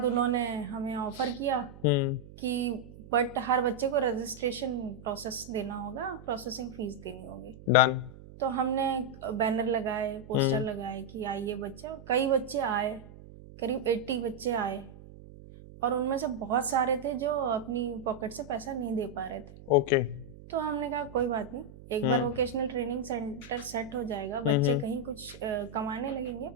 उन्होंने हमें ऑफ़र किया कि बट हर बच्चे को रजिस्ट्रेशन प्रोसेस देना होगा, प्रोसेसिंग फ़ीस देनी होगी। डन। तो हमने बैनर लगाए, पोस्टर लगाए कि आइए बच्चे, और कई बच्चे आए, करीब 80 बच्चे आए, और उनमें से बहुत सारे थे जो अपनी पॉकेट से पैसा नहीं दे पा रहे थे। ओके। तो हमने कहा कोई बात नहीं, एक बार वोकेशनल ट्रेनिंग सेंटर सेट हो जाएगा, बच्चे कहीं कुछ कमाने लगेंगे,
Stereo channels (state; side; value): noise; right; hum, 17 dB below the sound